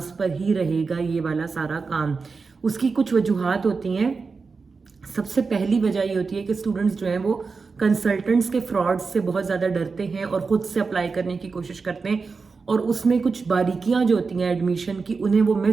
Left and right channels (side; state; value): left; quieter; 4.6 dB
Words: पर ही रहेगा ये वाला सारा काम। उसकी कुछ वजूहात होती हैं। सबसे पहली वजह ये होती है कि स्टूडेंट्स जो हैं वो कंसल्टेंट्स के फ्रॉड से बहुत ज़्यादा डरते हैं और ख़ुद से अप्लाई करने की कोशिश करते हैं, और उसमें कुछ बारीकियां जो होती हैं एडमिशन की उन्हें वो